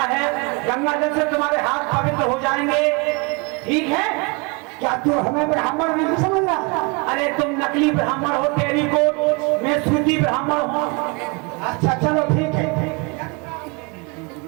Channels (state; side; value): quieter; left; 30.0 dB